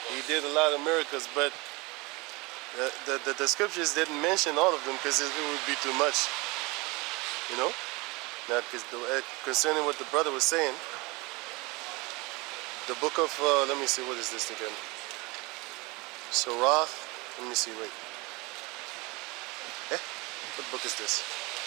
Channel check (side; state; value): left; quieter; 25.2 dB